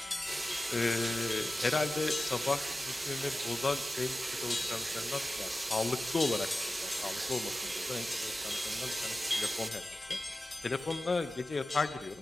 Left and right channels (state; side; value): normal; both; correlation 0.95